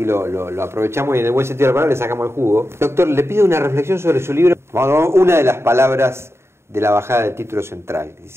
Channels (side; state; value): left; late; 0.12 ms